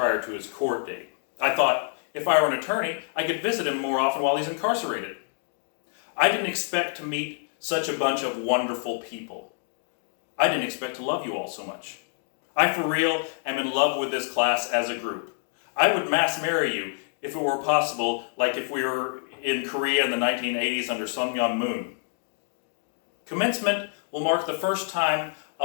to his court date. I thought if I were an attorney, I could visit him more often while he's incarcerated. I didn't expect to meet such a bunch of wonderful people. I didn't expect to love you all so much. I for real am in love with this class as a group. I would mass marry you if it were possible, like if we were in Korea in the 1980s under Sun Myung Moon. Commencement will mark the first time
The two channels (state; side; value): silent; right; 60 dB below the other